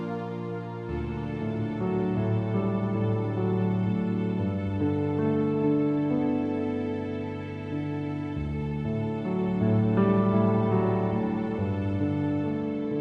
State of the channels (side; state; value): both; identical; correlation 1.00